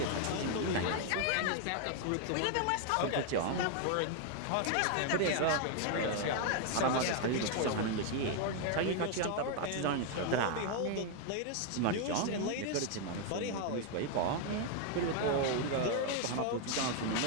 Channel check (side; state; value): both; different; correlation 0.01